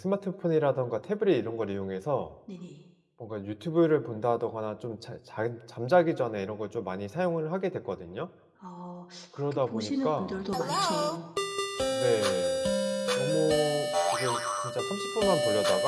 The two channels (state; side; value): identical; both; correlation 1.00